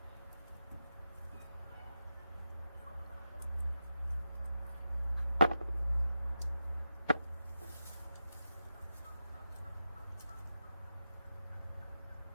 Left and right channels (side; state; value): both; inverted; correlation -0.89